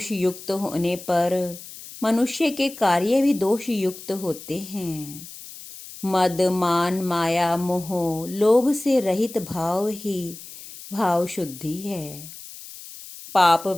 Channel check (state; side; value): noise; left; hiss, 15 dB below the sound